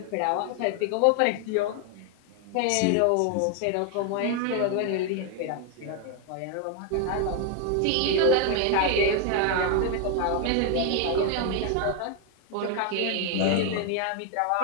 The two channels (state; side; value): different; both; correlation 0.01